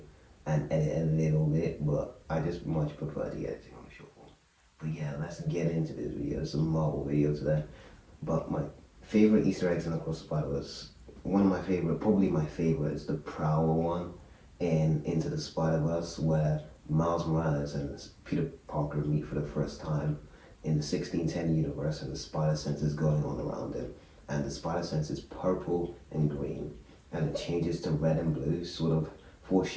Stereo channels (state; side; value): identical; both; correlation 1.00